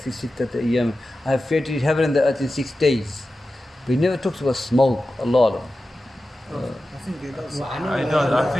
sittati ayyam. I have created heaven and the earth in 6 days. But he never talks about smoke. Allah. I think it does. I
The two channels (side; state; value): both; normal; correlation 0.94